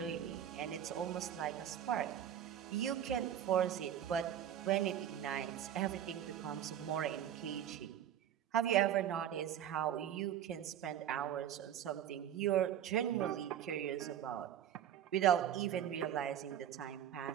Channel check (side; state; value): left; quieter; 10.3 dB